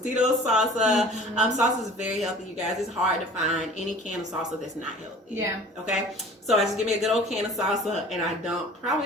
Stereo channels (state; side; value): normal; both; correlation 0.45